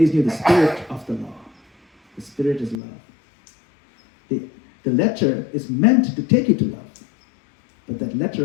knew the spirit of the law. The spirit is love. The letter is meant to take you to love. But that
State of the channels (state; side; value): drops out; right; at 2.8 s